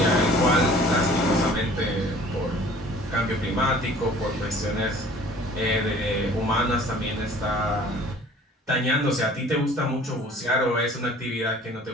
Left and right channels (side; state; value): both; normal; correlation 0.50